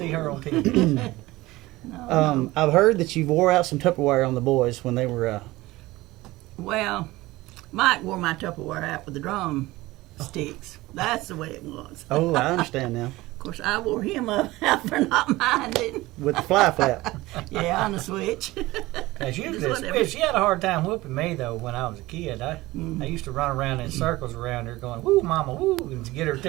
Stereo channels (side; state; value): left; quieter; 19.1 dB